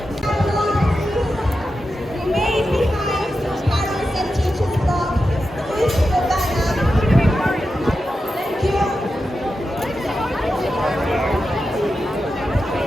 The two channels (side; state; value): both; normal; correlation 0.90